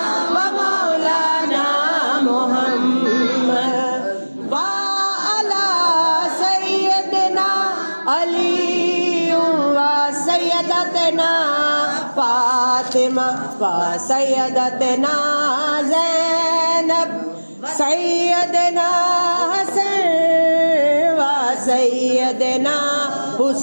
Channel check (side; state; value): both; inverted; correlation -1.00